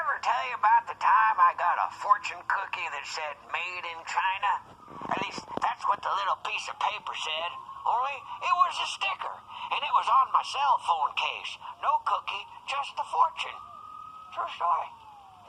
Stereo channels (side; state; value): both; identical; correlation 1.00